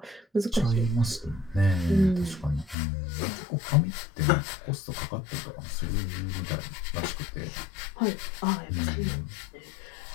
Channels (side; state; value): right; drops out; at 2.8 s